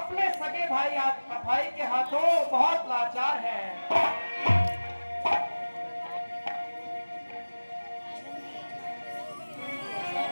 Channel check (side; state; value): both; inverted; correlation -1.00